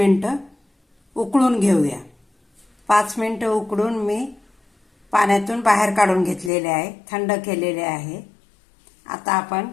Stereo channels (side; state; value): right; drops out; at 6.5 s